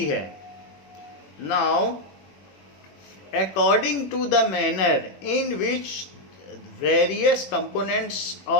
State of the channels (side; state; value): right; late; 21 ms